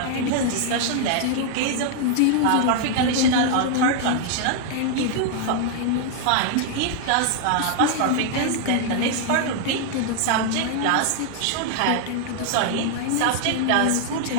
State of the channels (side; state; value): both; different; correlation 0.00